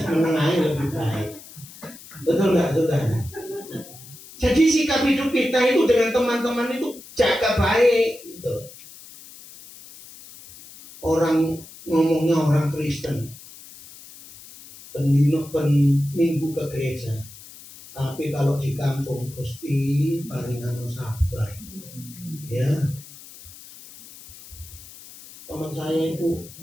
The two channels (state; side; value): noise; left; hiss, 18 dB below the sound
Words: meneng ae lebih baik. Betul nggak, saudara? Jadi sikap hidup kita itu dengan teman-teman itu jaga baik gitu. Orang ngomongnya orang Kristen, minggu ke gereja. Tapi kalau di kampung Gusti paringan sabar. Ya. Teman saya itu,